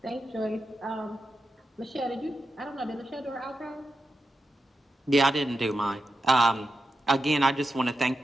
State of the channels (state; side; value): normal; both; correlation 0.89